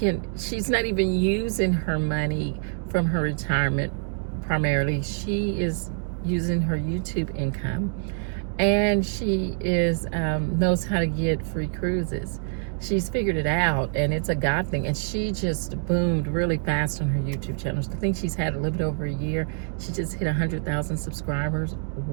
even using her money from her retirement primarily. She is using her YouTube income, and she knows how to get free cruises. She's figured it out, and it's a God thing. And she just boomed really fast on her YouTube channel. I think she's had a little bit over a year. She just hit 100,000 subscribers.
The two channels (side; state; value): left; silent; 56 dB below the other